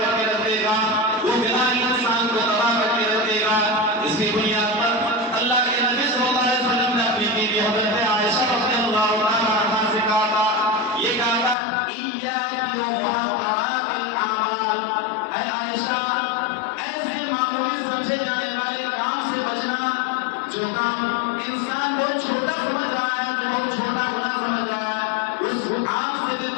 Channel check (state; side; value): drops out; right; at 11.6 s